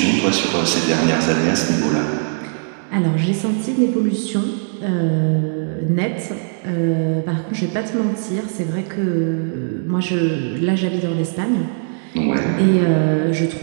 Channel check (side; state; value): left; silent; digital silence